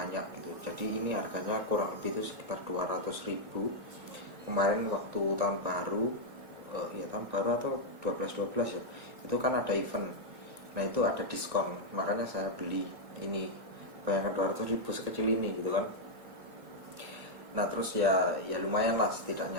gitu. Jadi ini harganya kurang lebih itu sekitar 200.000. Kemarin waktu tahun baru, ya tahun baru atau 12 ya, itu kan ada event. Nah itu ada diskon, makanya saya beli ini. Bayangkan 200.000 sekecil ini gitu kan. Nah terus ya lumayan lah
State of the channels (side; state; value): left; late; 1.9 ms